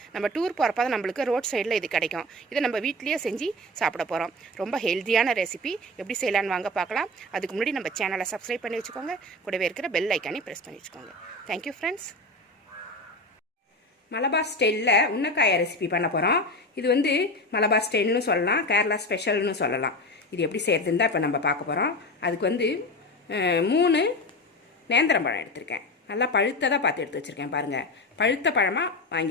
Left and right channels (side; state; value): both; normal; correlation 0.26